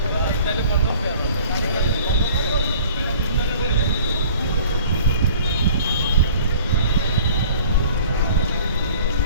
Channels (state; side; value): inverted; both; correlation -0.50